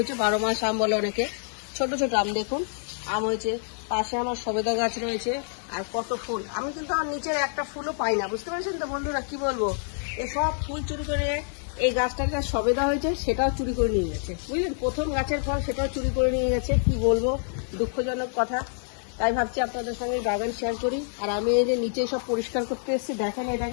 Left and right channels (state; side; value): silent; right; 58 dB below the other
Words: 12 মাস আম বলে অনেকে। ছোট ছোট আম দেখুন, আম হয়েছে। পাশে আমার সবেদা গাছ রয়েছে, আর কত ফুল। আমি কিন্তু আমার নিচের একটা ফুলও পাই না, বুঝতে পারছেন তো বন্ধুরা, কি বলবো। এসব ফুল চুরি করে এই গাছটাকে সবেদা হয়েছে সেটাও চুরি করে নিয়ে গেছে, বুঝলেন। প্রথম গাছের ফল সেটাও চুরি করে নিয়ে গেছে, কি বলবো, দুঃখজনক কথা। তাই ভাবছি আপনাদের সঙ্গে বাগান শেয়ার করি। আর আমি এই যে নিচে সব পরিষ্কার করতে এসেছি, দেখেন এই